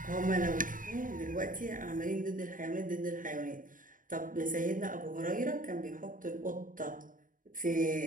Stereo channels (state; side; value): late; left; 0.39 ms